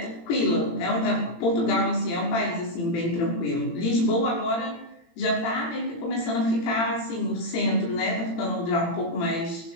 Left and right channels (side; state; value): right; late; 18 ms